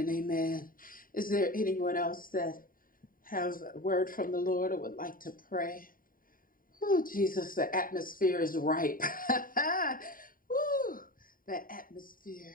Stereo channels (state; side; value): late; right; 0.41 ms